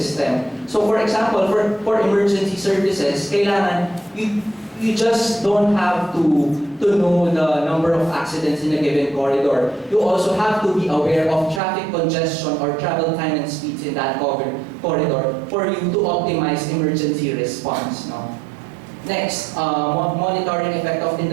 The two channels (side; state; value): left; drops out; at 11.6 s